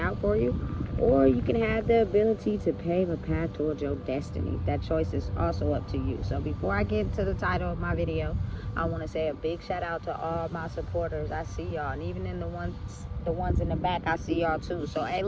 for you, or you can have the ability to pave a path towards your destiny. That choice is also up to you. So before I get to the title of my video, I want to say a big shout out to all my supporters. I see y'all, and even in the ones in the back, I see y'all too. So hey,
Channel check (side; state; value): both; identical; correlation 1.00